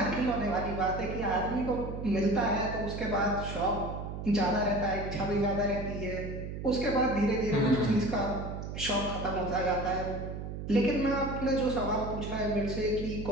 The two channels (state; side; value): noise; right; hum, 7 dB below the sound